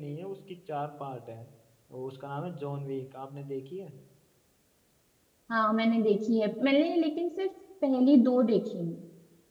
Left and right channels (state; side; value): identical; both; correlation 1.00